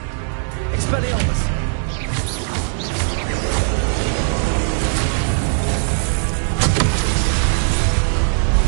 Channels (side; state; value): left; silent; digital silence